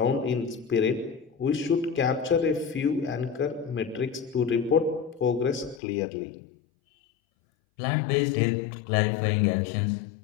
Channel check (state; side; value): drops out; right; at 5.8 s